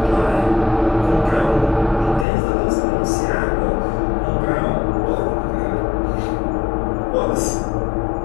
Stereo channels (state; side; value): drops out; right; at 2.2 s